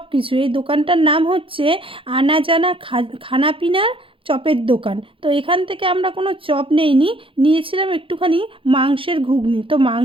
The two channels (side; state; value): left; late; 0.26 ms